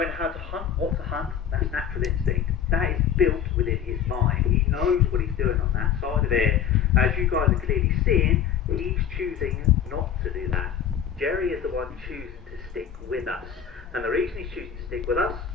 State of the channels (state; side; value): quieter; right; 8.5 dB